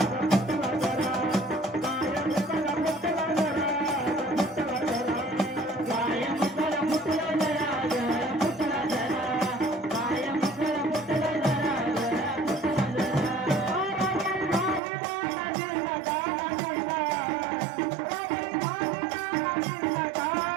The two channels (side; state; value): left; drops out; at 14.8 s